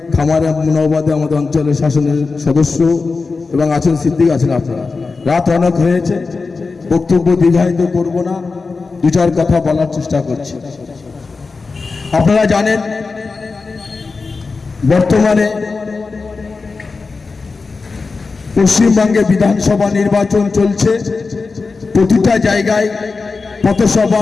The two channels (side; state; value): right; quieter; 4.2 dB